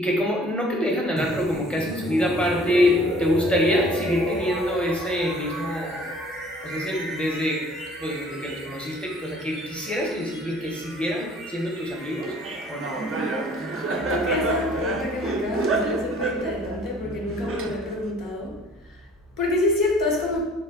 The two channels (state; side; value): normal; both; correlation 0.54